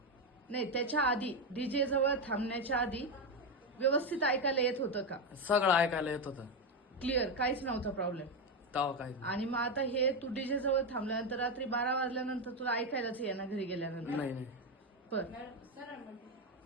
नाही, त्याच्या आधी डीजे जवळ थांबण्याच्या आधी व्यवस्थित ऐकायला येत होतं का? सगळं ऐकायला येत होतं. क्लिअर, काहीच नव्हता प्रॉब्लेम. तेव्हा काही आणि मग आता हे तू डीजे जवळ थांबल्यानंतर रात्री 12 वाजल्यानंतर तुला ऐकायलाच येणार घरी गेल्यानंतर? नाही नाही बर,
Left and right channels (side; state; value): both; normal; correlation 0.09